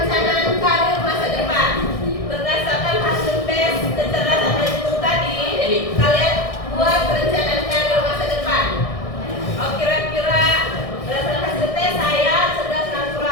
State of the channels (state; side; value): late; right; 1.6 ms